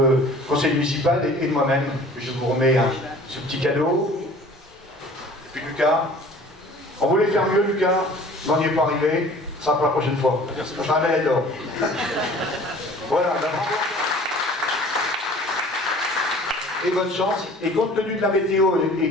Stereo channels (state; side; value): normal; both; correlation 0.48